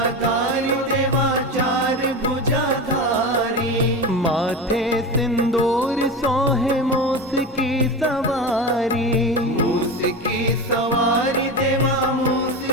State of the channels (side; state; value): both; normal; correlation 0.23